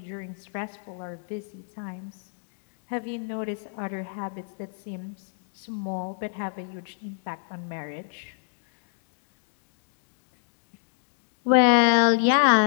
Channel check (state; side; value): silent; right; digital silence